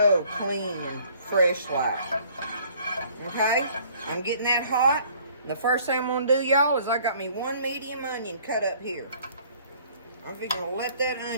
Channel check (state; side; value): inverted; both; correlation -0.57